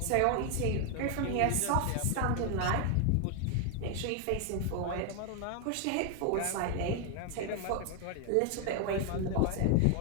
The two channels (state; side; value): different; both; correlation 0.00